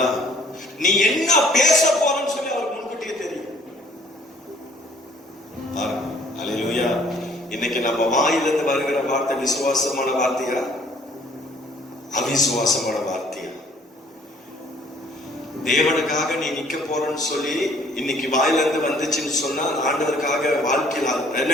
நீ என்ன பேச போறன்னு சொல்லி அவருக்கு முன்கூட்டியே தெரியும். அல்லேலூயா. இன்னைக்கு நம்ம வாயிலிருந்து வருகிற வார்த்தை விசுவாசமான வார்த்தையா, அவிசுவாசமான வார்த்தையா? தேவனுக்காக நீ நிக்க போறன்னு சொல்லி இன்னைக்கு வாயிலிருந்து வந்துச்சுன்னு சொன்னா, ஆண்டவருக்காக வாழ்க்கையில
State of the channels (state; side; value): normal; both; correlation 0.59